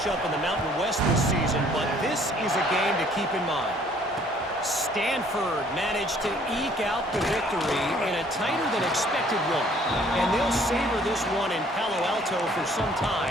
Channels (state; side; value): normal; both; correlation 0.59